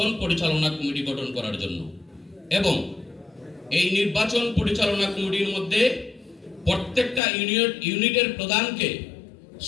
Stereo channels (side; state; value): right; drops out; at 7.2 s